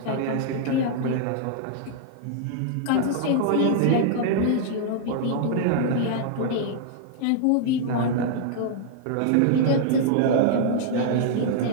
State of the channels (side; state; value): both; different; correlation -0.01